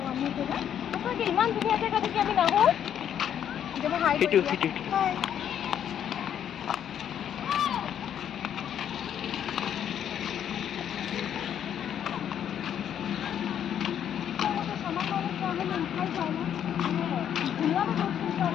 ইমান ধুনীয়া জেগা দেখি আমি নাহো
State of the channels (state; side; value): quieter; right; 9.5 dB